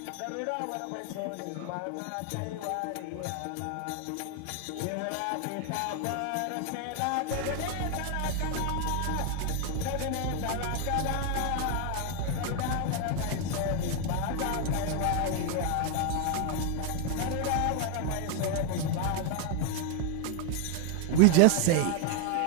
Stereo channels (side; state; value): both; different; correlation 0.01